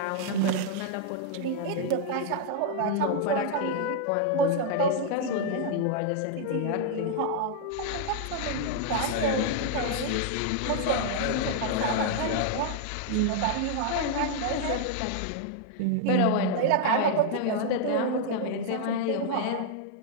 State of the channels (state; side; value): different; both; correlation -0.01